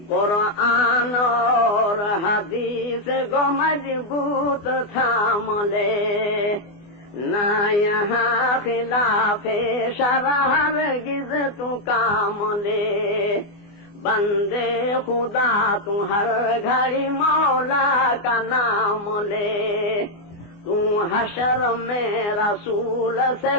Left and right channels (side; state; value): right; late; 24 ms